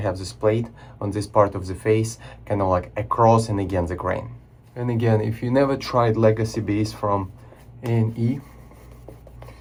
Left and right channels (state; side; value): identical; both; correlation 1.00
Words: this plate on this part of the face, kind of like across and against the grain. And again, if you never tried legacy base from A&E,